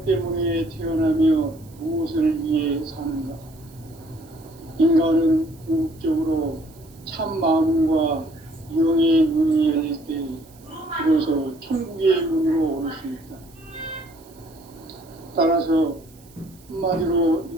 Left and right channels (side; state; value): right; noise; hiss, 27 dB below the sound